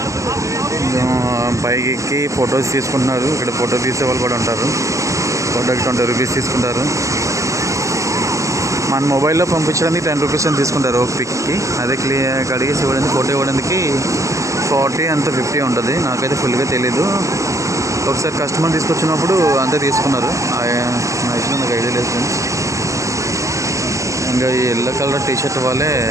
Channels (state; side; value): late; left; 0.15 ms